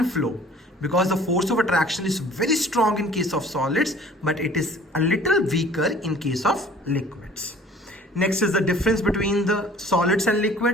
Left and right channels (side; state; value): both; normal; correlation 0.50